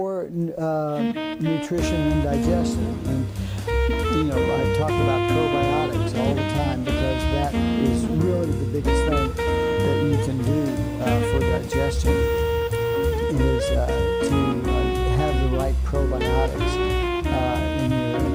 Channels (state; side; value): identical; both; correlation 1.00